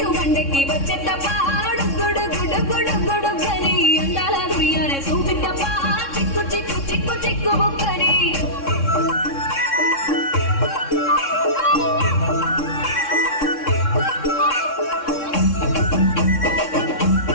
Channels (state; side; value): late; right; 3.6 ms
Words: బండకి వచ్చేటప్ప గుడు గుడు గుడు గుడు గని అందాల దుర్యాన చూపితప్ప చిక్కు చిక్కు చిక్కు చిక్కు బుగ్గని